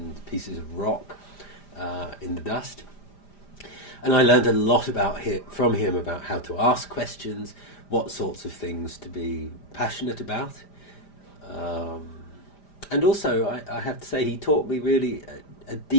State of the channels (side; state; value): right; late; 5.0 ms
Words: pieces of rock in the dust. And I learned a lot from him about how to ask questions, what sorts of things to be passionate about. And also, I have to say, he taught me really a